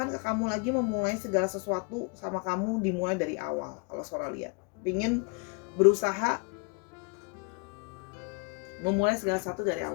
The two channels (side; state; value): right; quieter; 34.5 dB